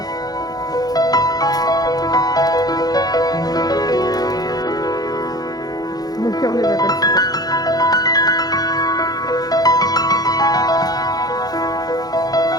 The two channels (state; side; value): late; right; 0.19 ms